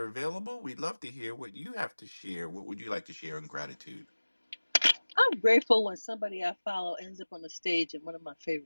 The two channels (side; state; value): both; inverted; correlation -1.00